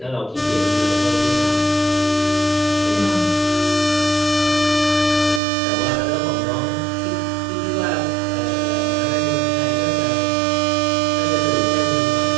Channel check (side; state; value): left; drops out; at 5.4 s